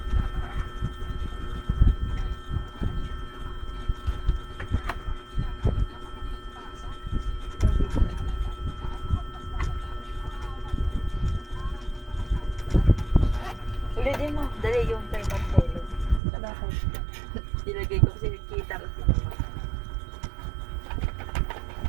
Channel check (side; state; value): left; drops out; at 16.2 s